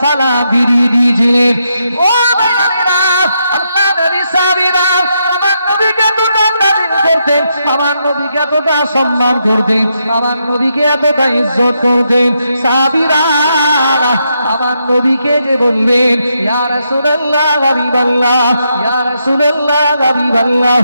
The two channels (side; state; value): both; inverted; correlation -0.81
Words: সালাম ফিরিয়ে দিয়েছিলেন। ও ভাইরা, আল্লাহ নবী সাহাবীরা আমার নবীকে করতেন, আমার নবীকে এতটা সম্মান করতেন, আমার নবীকে এতটা ইজ্জত করতেন। সাহাবীরা আমার নবীকে যে বলবেন ইয়া রাসূলুল্লাহ হাবিবাল্লাহ, ইয়া রাসূলুল্লাহ হাবিবাল্লাহ,